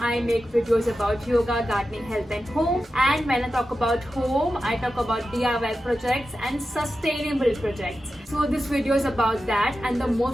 I make videos about yoga, gardening, health and home. And when I talk about home, I talk about DIY projects and sustainable projects. So this video is about that, and the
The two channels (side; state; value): both; normal; correlation 0.92